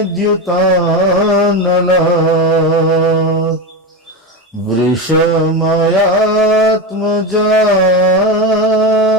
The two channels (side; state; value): both; normal; correlation 0.17